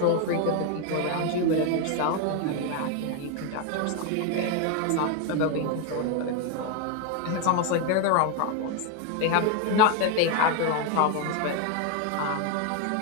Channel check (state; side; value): different; both; correlation 0.01